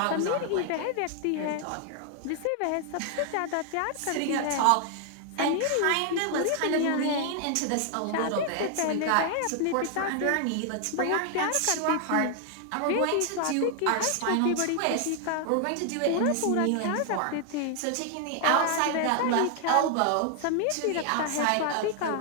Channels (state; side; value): different; both; correlation 0.00